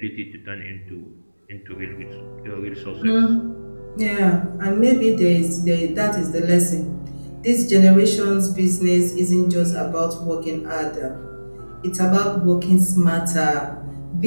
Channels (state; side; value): inverted; both; correlation -1.00